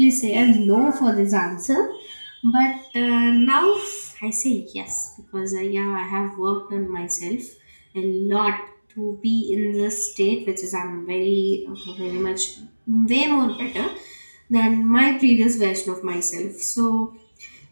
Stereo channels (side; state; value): both; inverted; correlation -1.00